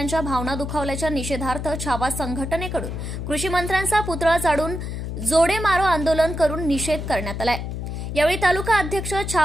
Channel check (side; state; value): left; noise; hum, 5 dB below the sound